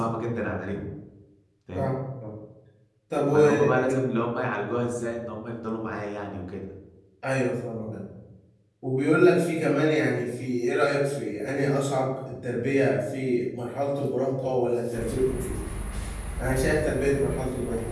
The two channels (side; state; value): both; identical; correlation 1.00